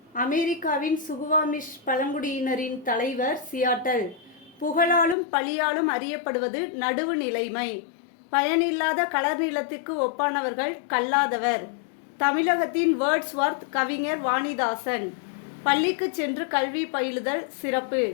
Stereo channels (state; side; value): drops out; right; at 5.2 s